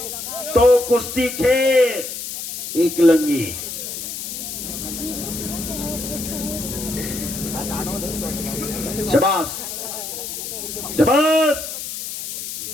तो कुस्ती खेळ एकलंगी। शाबास शाबास।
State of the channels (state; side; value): noise; left; hiss, 7 dB below the sound